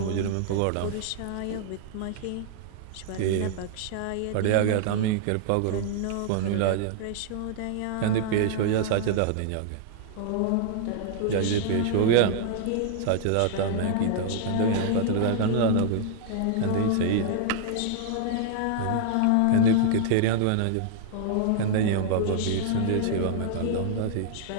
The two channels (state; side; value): different; both; correlation -0.01